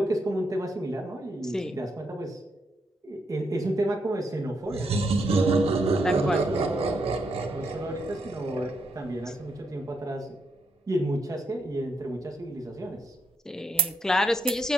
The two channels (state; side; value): normal; both; correlation 0.79